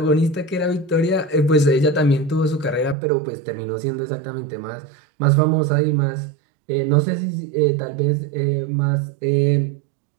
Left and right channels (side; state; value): left; drops out; at 3.0 s